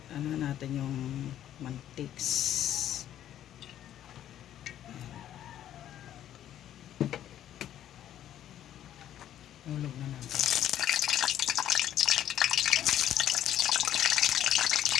Ano natin yung mantiks. Hulog na natin.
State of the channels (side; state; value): right; quieter; 11.4 dB